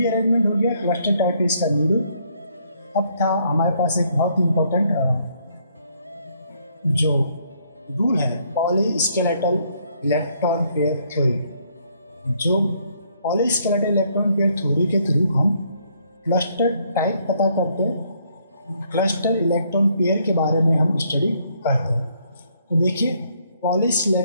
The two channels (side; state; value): both; inverted; correlation -0.69